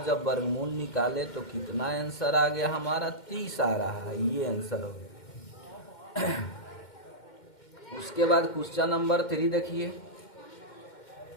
जब वर्गमूल निकाले तो कितना आंसर आ गया हमारा? 30 आ रहा है। ये आंसर हो गया। उसके बाद क्वेश्चन नंबर 3 देखिए,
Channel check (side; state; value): right; late; 2.1 ms